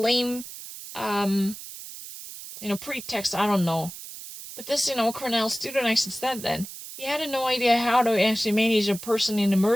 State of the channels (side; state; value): right; noise; hiss, 12 dB below the sound